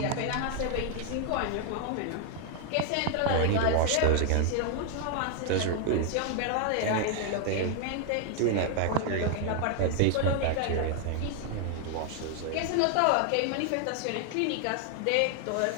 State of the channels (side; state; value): both; different; correlation 0.00